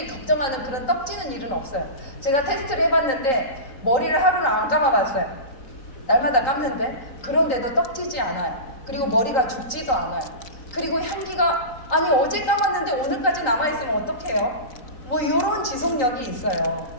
걱정하는 그런 떡지는 일은 없어요. 제가 테스트를 해봤는데 머리를 하루를 안 감아봤어요. 날마다 감는데 그런데도 떡지지 않아요. 그리고 머리가 죽지도 않아요. 그리고 향기가, 아니 어제 감았는데 오늘까지 남아있으면 어떡해요? 뭐 이런 지속력이 있어요.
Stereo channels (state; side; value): late; right; 3.8 ms